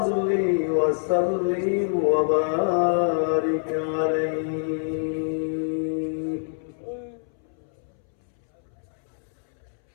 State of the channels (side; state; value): right; silent; 61 dB below the other